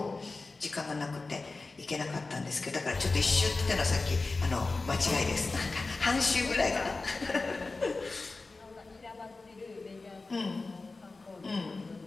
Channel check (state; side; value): quieter; right; 3.6 dB